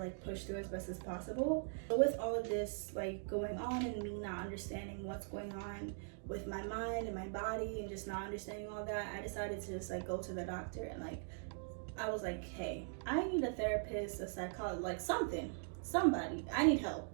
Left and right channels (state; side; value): silent; left; digital silence